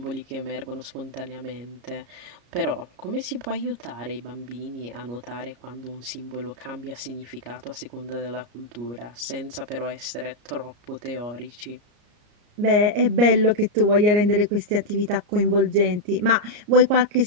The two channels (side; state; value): left; late; 34 ms